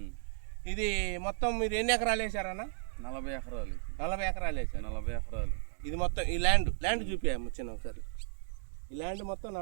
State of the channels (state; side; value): silent; left; digital silence